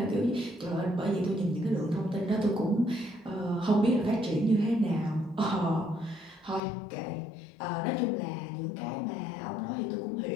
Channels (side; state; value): right; drops out; at 6.6 s